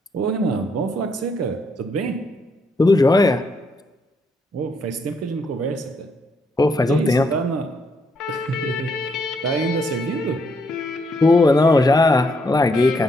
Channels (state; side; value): normal; both; correlation 0.75